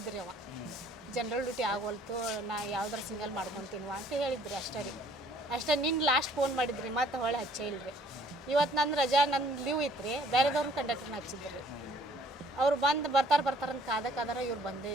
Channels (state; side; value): normal; both; correlation 0.59